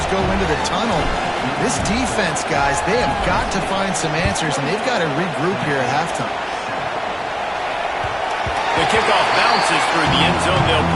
go into the tunnel. This defense, guys, they have got to find some answers, and they've got to regroup here at halftime. The kickoff bounces through the end zone. They'll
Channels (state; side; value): identical; both; correlation 1.00